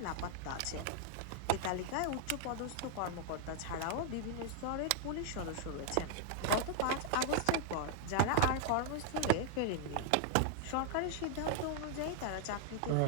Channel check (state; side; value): different; both; correlation 0.00